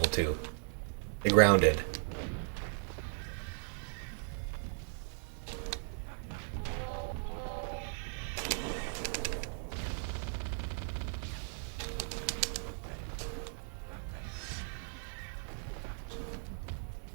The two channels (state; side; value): silent; left; 53 dB below the other